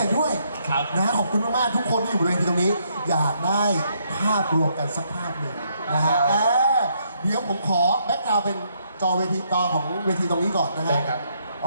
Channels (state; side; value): inverted; both; correlation -0.73